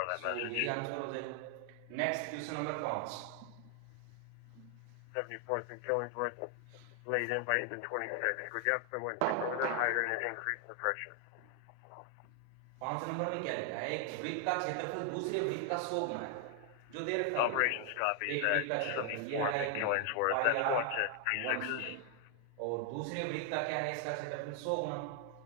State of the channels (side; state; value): both; different; correlation 0.00